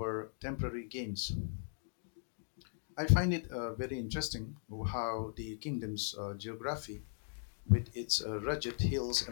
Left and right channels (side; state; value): right; silent; digital silence